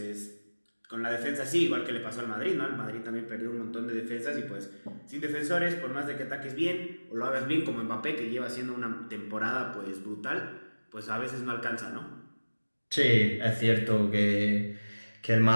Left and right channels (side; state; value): both; inverted; correlation -1.00